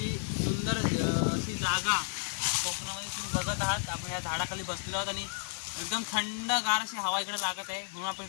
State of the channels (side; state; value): right; silent; 56 dB below the other